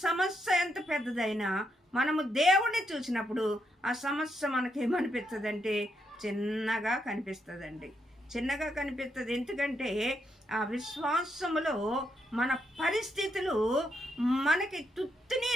సమస్య ఎంత పెద్దదైనా మనము దేవుణ్ణి చూసినప్పుడు ఆ సమస్య మనకేమనిపిస్తుందంటే చిన్నగా కనిపిస్తుందండి, చిన్నగా కనిపిస్తుంది. ఎందుకంటే ఆ విశ్వాసములో మన పరిస్థితులు మనకి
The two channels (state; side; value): normal; both; correlation 0.79